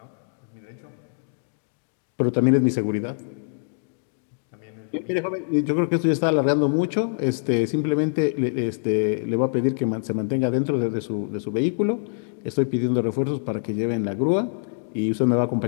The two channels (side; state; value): right; silent; digital silence